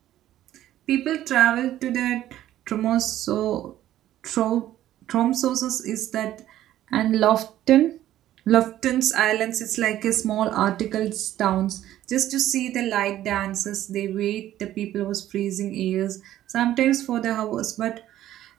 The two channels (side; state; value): left; quieter; 13.0 dB